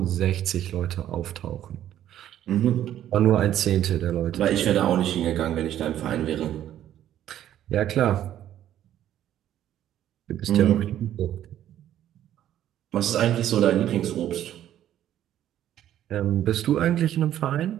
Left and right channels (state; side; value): quieter; left; 11.6 dB